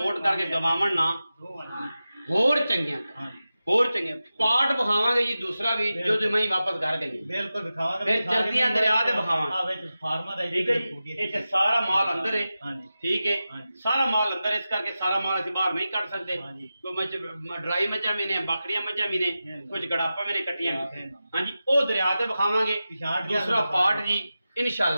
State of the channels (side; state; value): both; inverted; correlation -0.93